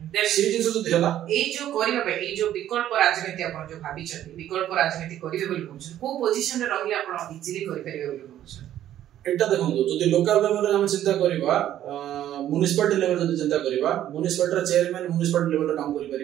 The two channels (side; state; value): left; quieter; 11.9 dB